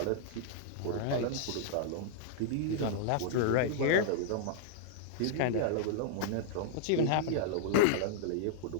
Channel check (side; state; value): both; different; correlation -0.01